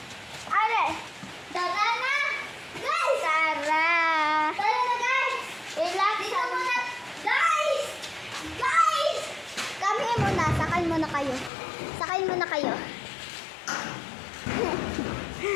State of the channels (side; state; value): right; drops out; at 11.5 s